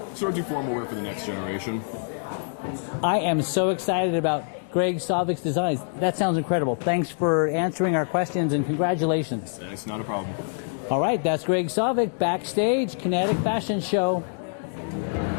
sort of do formal wear for the next generation. I am so excited about Greg Sovic's designs. That sounds incredible. Thanks for answering our questions and congratulations. It's not a problem. All right, that's Greg Sovic, backstage, Kinetic Fashion Show.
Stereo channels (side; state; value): right; silent; digital silence